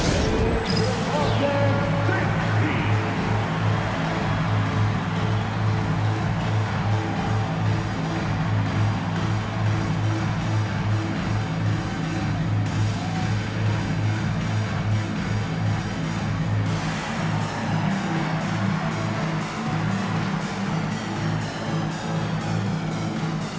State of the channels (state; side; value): identical; both; correlation 1.00